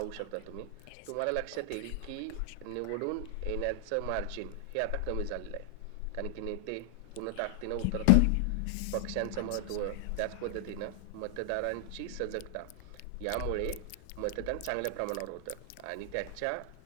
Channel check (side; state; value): both; different; correlation 0.00